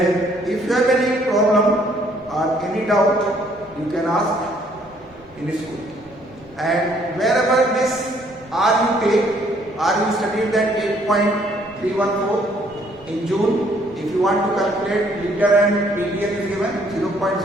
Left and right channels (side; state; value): both; normal; correlation 0.64